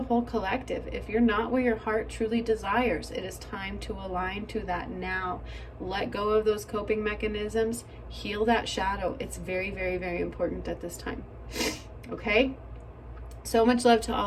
whole collective. If you're not where your heart truly desires, it is time to align to that now. Let go of those coping mechanisms. Heal that shadow. It's very, very, very important at this time. Okay? So much love to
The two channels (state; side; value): identical; both; correlation 1.00